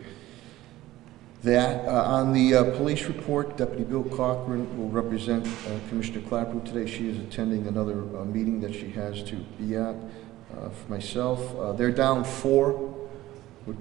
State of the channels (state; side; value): quieter; left; 16.2 dB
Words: that. On the police report, Deputy Bill Cochran will represent Commissioner Clapper today. She is attending another meeting that she has to be at. For myself, they're down 4 with